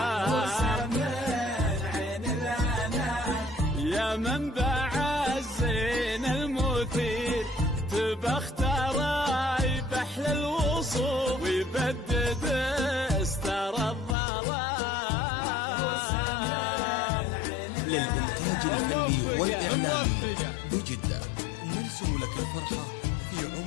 عين الأنام يا منبع الزين المثير، تبختر بحل الوصوف ويبدد استر الظلام. للإنتاج الفني والإعلامي بجدة، نرسم لك الفرحة في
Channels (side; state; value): right; drops out; at 14.2 s